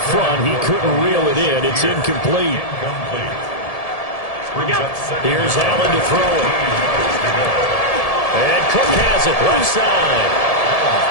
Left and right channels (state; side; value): late; right; 1.7 ms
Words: front. He couldn't reel it in. It's incomplete. Here's Allen to throw it. And Cook has it left side.